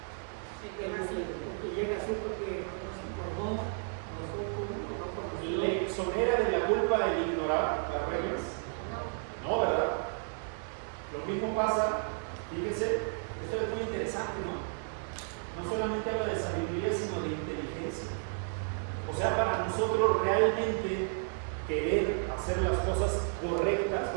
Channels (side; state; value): left; silent; 56 dB below the other